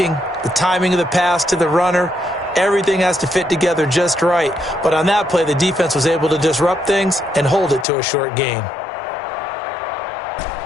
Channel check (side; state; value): right; drops out; at 7.9 s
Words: the timing of the pass to the runner, everything has to fit together just right. But on that play, the defense was able to disrupt things and hold it to a short gain.